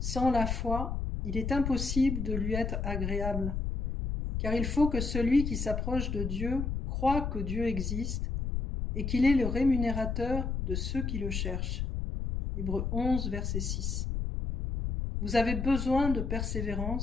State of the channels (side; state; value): left; noise; rumble, 2 dB below the sound